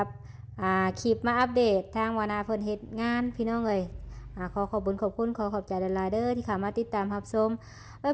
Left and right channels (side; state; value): both; identical; correlation 1.00